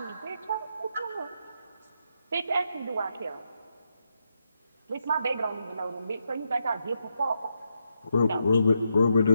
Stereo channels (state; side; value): inverted; both; correlation -0.82